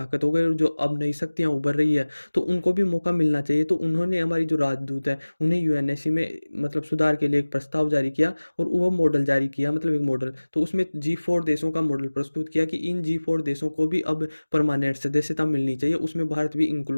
हो गए और जो अब नई शक्तियाँ उभर रही है तो उनको भी मौका मिलना चाहिए। तो उन्होंने हमारी जो राजदूत है उन्हें यूएनएससी में मतलब सुधार के लिए एक प्रस्ताव जारी किया और वो मॉडल जारी किया, मतलब एक मॉडल। तो उसमें G4 देशों का मॉडल प्रस्तुत किया कि इन G4 देशों को भी अब परमानेंट सदस्यता मिलनी चाहिए। उसमें भारत भी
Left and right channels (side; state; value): both; inverted; correlation -1.00